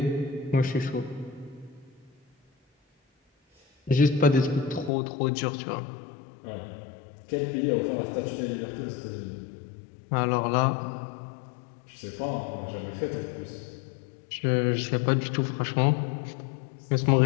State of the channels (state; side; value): drops out; right; at 4.9 s